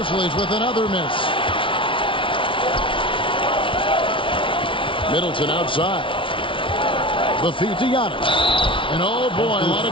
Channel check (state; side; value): late; right; 0.25 ms